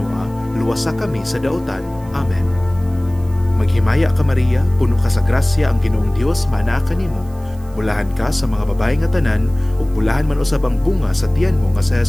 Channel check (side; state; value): right; noise; hiss, 27 dB below the sound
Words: luwasa kami sa daotan. Amen. Maghimaya ka Maria, puno ka sa grasya, ang Ginoong Dios maanaa kanimo. Bulahan ka sa mga babae nga tanan, ug bulahan man usab ang bunga sa tiyan mo nga si